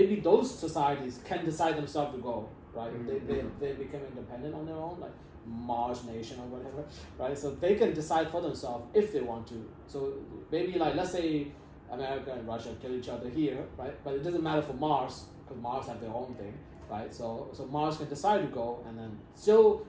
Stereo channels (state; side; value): identical; both; correlation 1.00